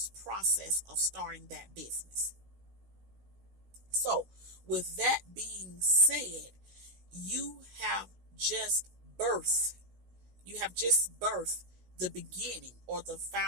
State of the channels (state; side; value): late; left; 16 ms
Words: process of starting that business. So with that being said, you have just birthed you have just birthed the beginning, or the